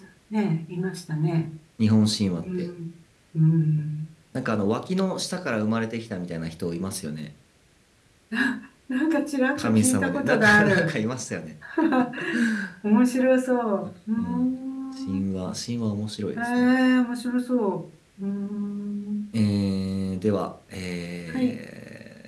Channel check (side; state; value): both; identical; correlation 1.00